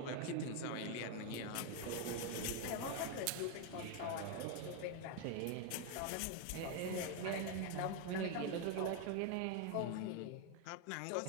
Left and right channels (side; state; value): both; different; correlation 0.01